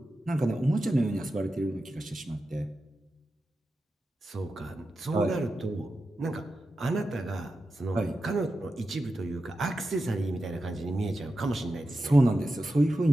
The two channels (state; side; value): normal; both; correlation 0.91